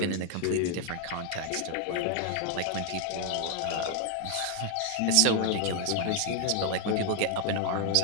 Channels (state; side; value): different; both; correlation 0.00